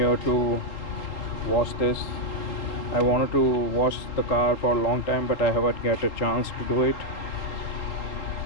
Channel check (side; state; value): right; late; 3.8 ms